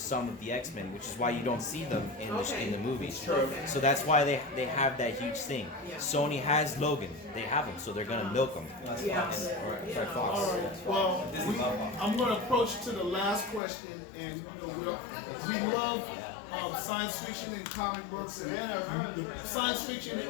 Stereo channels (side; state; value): right; drops out; at 13.6 s